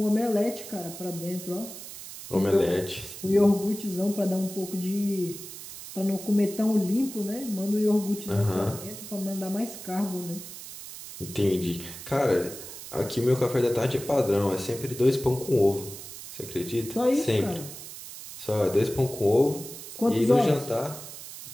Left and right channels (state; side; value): noise; right; hiss, 12 dB below the sound